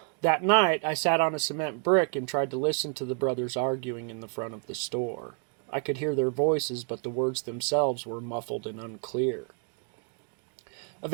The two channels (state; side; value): quieter; left; 39.4 dB